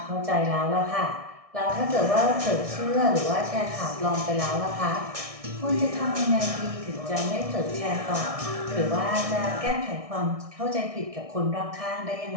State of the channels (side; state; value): left; late; 1.6 ms